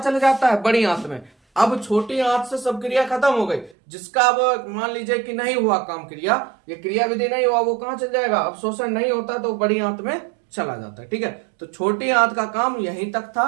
जाता है, बड़ी आंत में। अब छोटी आंत से सब क्रिया खत्म हो गई, जिसका अब मान लीजिए कि नहीं हुआ काम, क्रिया, ये क्रिया विधि नहीं हुआ, वो कहां चल जाएगा, अवशोषण नहीं होता तो बड़ी आंत में चला जाता है। ठीक है। तो छोटी आंत का काम यहीं तक था।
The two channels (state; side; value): drops out; left; at 3.8 s